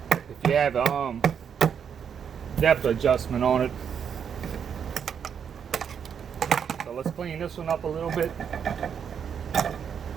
if you have depth adjustment on it. So let's clean this one up a little bit.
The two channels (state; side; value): quieter; left; 7.6 dB